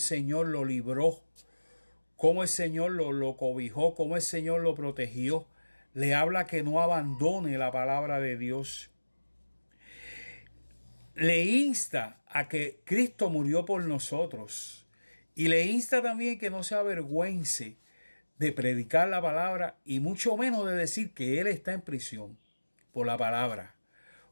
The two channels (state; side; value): inverted; both; correlation -1.00